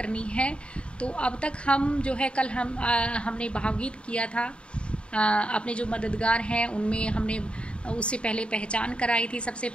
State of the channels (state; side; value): late; right; 0.056 ms